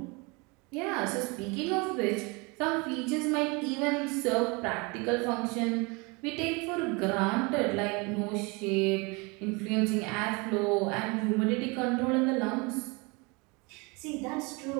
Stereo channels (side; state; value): left; quieter; 28.3 dB